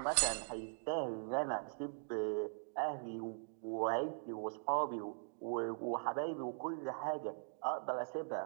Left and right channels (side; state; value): left; silent; digital silence